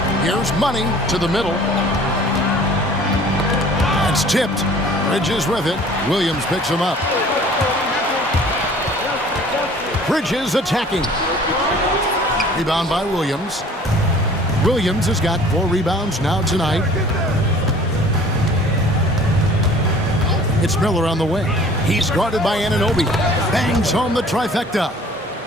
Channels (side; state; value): both; normal; correlation 0.50